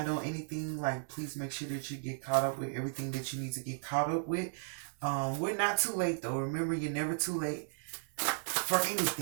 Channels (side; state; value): left; silent; 54 dB below the other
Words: on anything, like, please make sure that you get caught up with everything that you need to get caught up with. We're not too late, though. Remember, you're never too late for